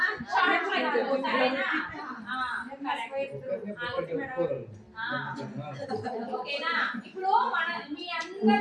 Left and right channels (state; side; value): identical; both; correlation 1.00